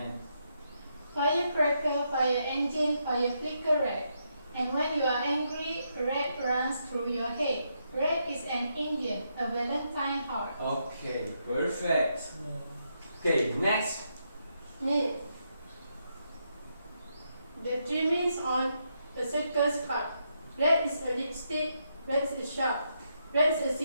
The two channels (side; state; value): both; inverted; correlation -0.80